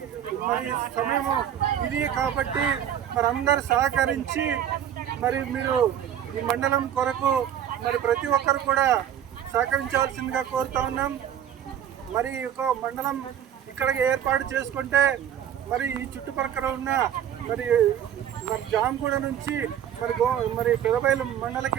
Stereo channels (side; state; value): left; quieter; 10.0 dB